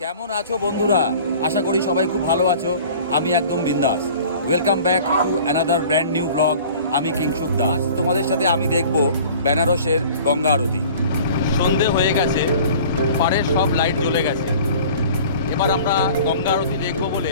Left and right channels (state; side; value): inverted; both; correlation -0.45